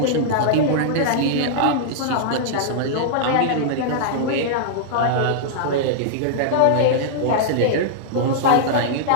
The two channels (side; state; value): both; different; correlation -0.02